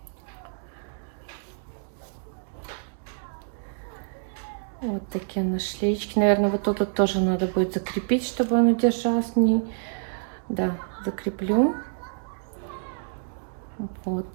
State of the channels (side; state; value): left; silent; digital silence